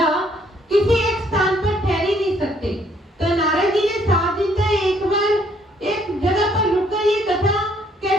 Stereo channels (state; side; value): normal; both; correlation 0.66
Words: किसी एक स्थान पर ठहर ही नहीं सकते, तो नारद जी ने 7 दिन तक एक बार एक जगह पर रुककर ये कथा